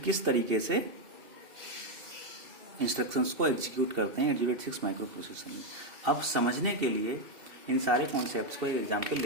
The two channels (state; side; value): late; left; 2.7 ms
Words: किस तरीके से इंस्ट्रक्शंस को एग्जीक्यूट करते हैं 8086 माइक्रो प्रोसेसर में। अब समझने के लिए इन सारे कॉन्सेप्ट्स को एक एग्जाम्पल